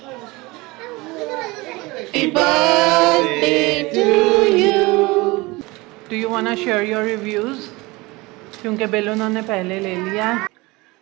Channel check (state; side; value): quieter; left; 23.0 dB